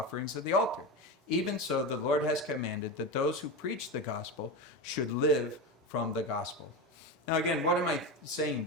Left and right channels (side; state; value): both; normal; correlation 0.20